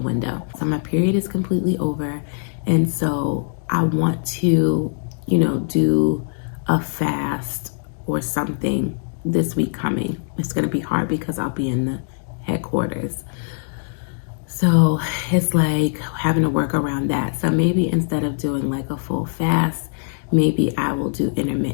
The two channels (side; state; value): right; silent; digital silence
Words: window. So my period is completely over, and so I want to, do a fast or something this week coming. It's going to be hard because I'll be in the headquarters. So it's like having to work around that. So maybe instead of doing like a full fast, maybe I will do